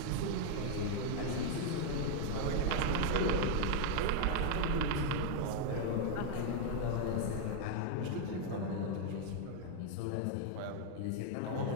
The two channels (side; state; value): both; different; correlation 0.00